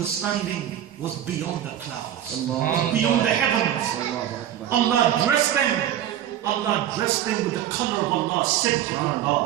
was beyond the clouds, was beyond the heavens. Allah dressed them with the color of Allah,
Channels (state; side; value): quieter; left; 11.2 dB